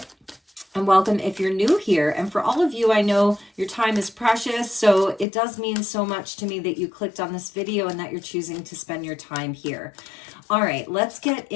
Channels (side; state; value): right; drops out; at 5.2 s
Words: And welcome if you're new here. And for all of you, I know your time is precious, so it does mean so much to me that you clicked on this video and that you're choosing to spend your time here. All right, let's get